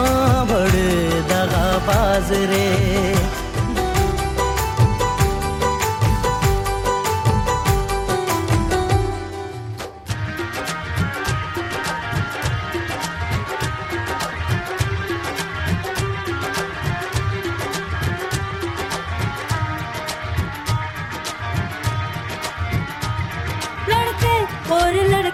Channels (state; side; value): identical; both; correlation 1.00